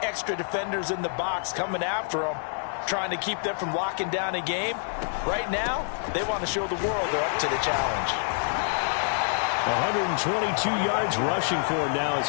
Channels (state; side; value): silent; right; digital silence